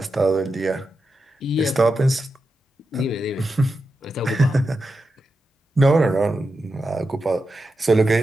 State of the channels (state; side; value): normal; both; correlation 0.89